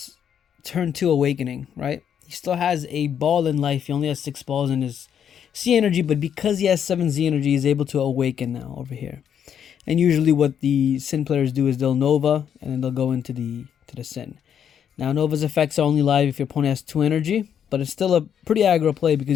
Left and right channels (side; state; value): right; quieter; 8.6 dB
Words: turn 2 awakening, right? He still has a ball in life. He only has 6 balls in his C energy, but because he has 7 Z energy, he's able to awaken now over here. And usually what the Syn players do is they'll Nova, and then they'll go into the Syn. Now, Nova's effects are only live if your opponent has 2 energy, but it's still a pretty aggro play